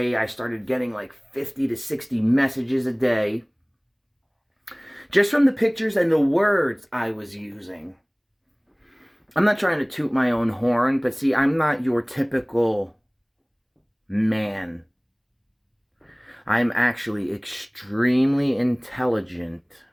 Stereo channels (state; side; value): identical; both; correlation 1.00